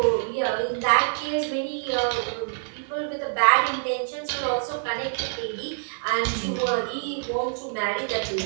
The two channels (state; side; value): silent; left; digital silence